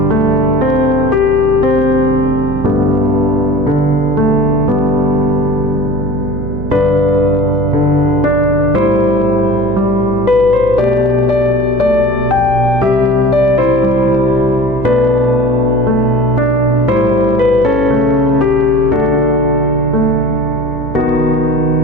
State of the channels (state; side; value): noise; right; hum, 9 dB below the sound